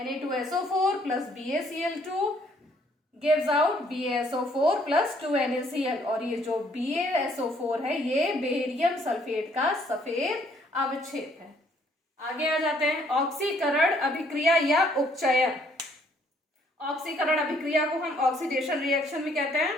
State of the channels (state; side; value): normal; both; correlation 0.65